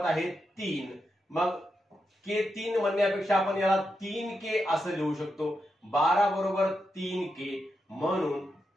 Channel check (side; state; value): both; normal; correlation 0.86